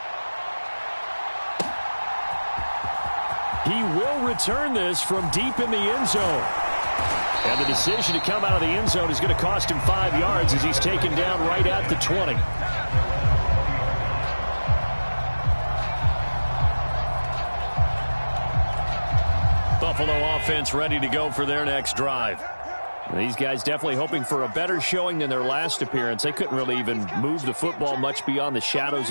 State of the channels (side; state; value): both; inverted; correlation -1.00